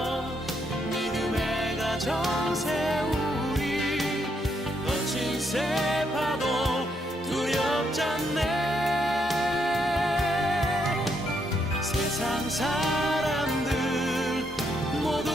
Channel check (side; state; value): both; normal; correlation 0.76